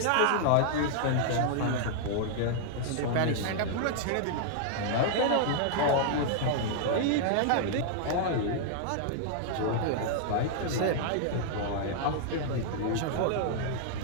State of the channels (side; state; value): both; different; correlation -0.01